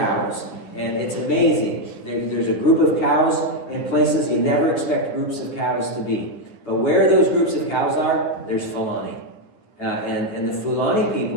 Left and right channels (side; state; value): right; late; 10 ms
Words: And it's amazing. There's a group of cows in places you never expect groups of cows to be. But where those groups of cows are, there's Fulani. And the Fulani